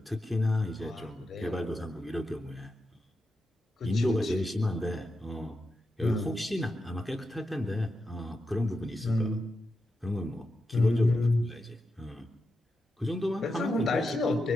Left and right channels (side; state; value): both; normal; correlation 0.88